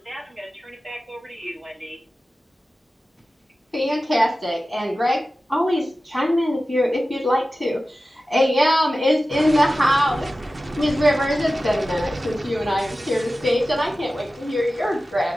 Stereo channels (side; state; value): both; normal; correlation 0.95